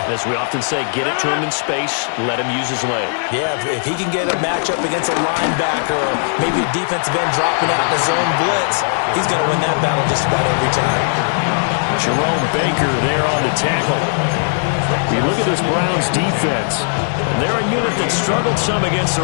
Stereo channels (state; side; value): silent; right; digital silence